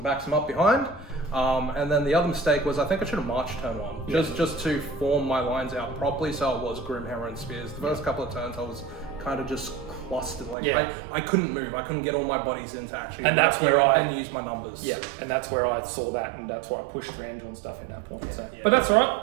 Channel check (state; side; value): drops out; left; at 10.6 s